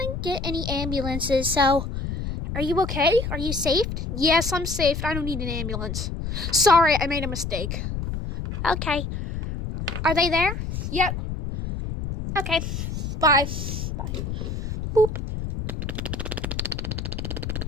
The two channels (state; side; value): noise; left; rumble, 5 dB below the sound